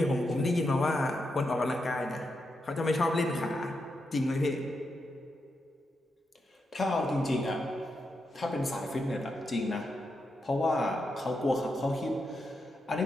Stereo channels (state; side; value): normal; both; correlation 0.85